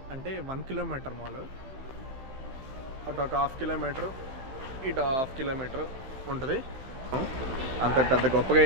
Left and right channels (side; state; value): left; late; 15 ms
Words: అంటే 1 కిలోమీటర్ మాల్. అటు ఒక 1/2 కిలోమీటర్, ఇటు 1/2 కిలోమీటర్ ఉంటుంది. అంత పెద్ద గొప్పగా